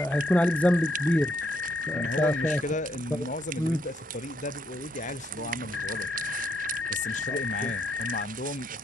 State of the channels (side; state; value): both; normal; correlation 0.74